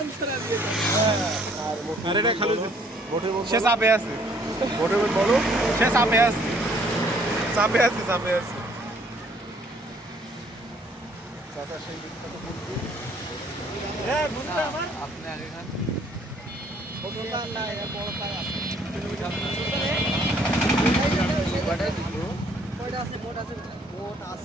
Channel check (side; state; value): both; normal; correlation 0.62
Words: আরে রে খালু সে চাপে আছে ভোটের বলো সে চাপে আছে চাপে আছে চাপে আছে চাচা সেই বিখ্যাত বন্ধু আপনি আগে খান